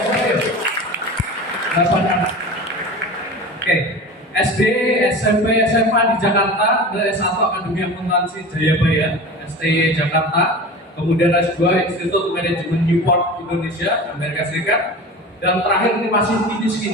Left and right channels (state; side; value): normal; both; correlation 0.33